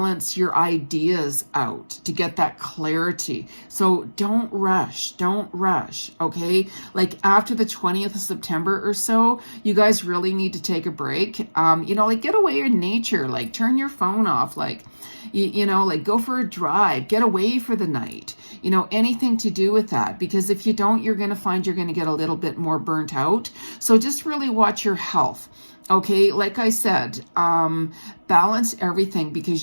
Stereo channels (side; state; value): both; inverted; correlation -1.00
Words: your ideas out to get that clarity. So don't rush, okay? Like after the 20th of September or so, you guys really need to take a break. You know, like get away in nature, like turn your phone off, like, you know, like go for a drive, get away for the night, you know, anything to do with that. Because if you don't, you're going to find you're going to get a little bit more burnt out. So just really watch your health. Okay, like I said, balance everything, because